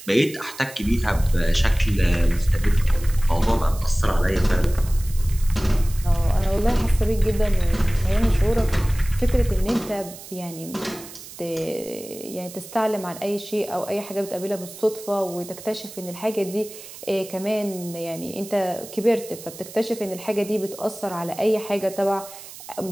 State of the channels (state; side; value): noise; right; hiss, 15 dB below the sound